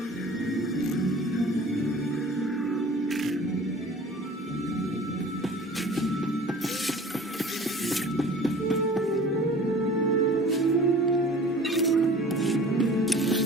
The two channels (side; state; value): both; normal; correlation 0.44